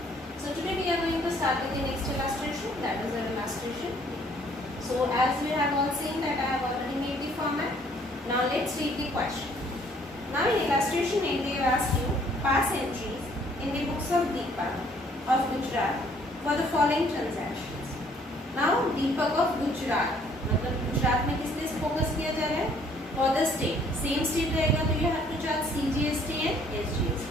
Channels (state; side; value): normal; both; correlation 0.61